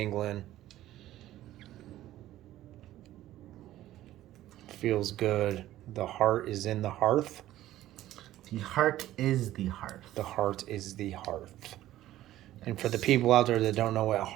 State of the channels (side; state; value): left; quieter; 14.2 dB